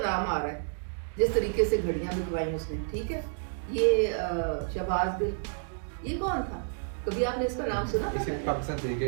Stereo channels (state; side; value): silent; left; digital silence